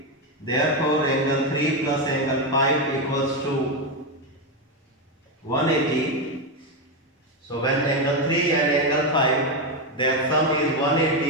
Therefore, angle 3 plus angle 5 equals to 180. So when angle 3 and angle 5, their sum is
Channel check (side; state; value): both; normal; correlation 0.08